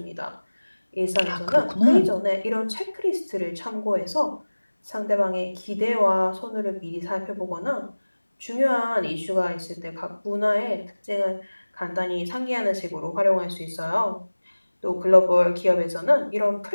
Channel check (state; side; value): inverted; both; correlation -1.00